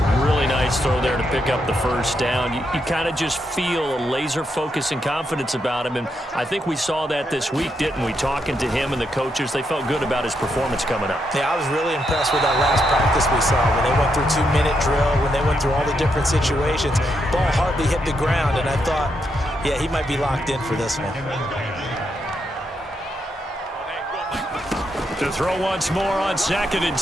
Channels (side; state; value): both; normal; correlation 0.80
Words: Really nice throw there to pick up the first down. You kind of just feel a laser focus and confidence about him, and I think we saw that this week, didn't we? Talking to him and the coaches, they felt good about his performance coming up. Yeah, I was really impressed with that last practice we saw when they went through 2-minute drill, when they went through all the different situations. Ball hardly hit the ground, and I thought, yeah, he might be locked in for this one. To throw once more on 2nd and